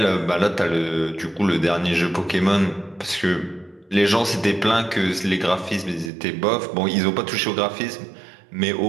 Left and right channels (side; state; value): left; drops out; at 6.1 s